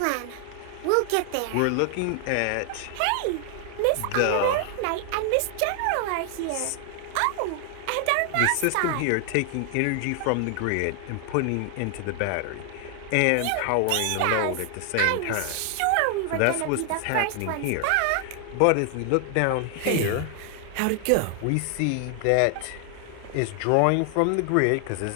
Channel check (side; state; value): both; different; correlation 0.00